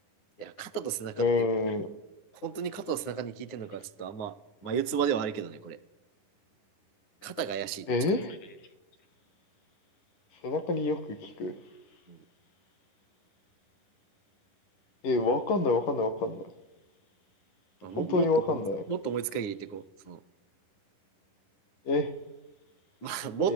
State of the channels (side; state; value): right; late; 9.7 ms